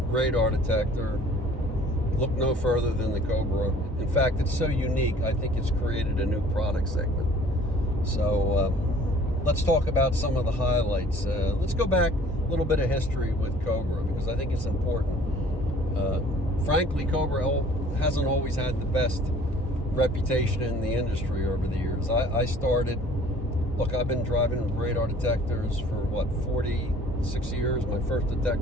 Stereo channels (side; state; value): both; normal; correlation 0.52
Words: radar detector, look no further than the Cobra. In fact, it's so unique, I think it's created a new product segment. So let's talk about some of the highlights. Let's go back a little bit of history with Cobra, because I think it's important. Frankly, Cobra hasn't always had the best reputation in the industry over the years. I started, I've been driving radar detectors for 46 years. My first